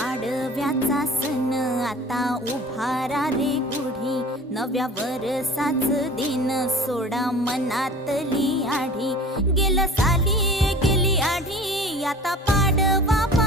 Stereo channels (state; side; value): normal; both; correlation 0.42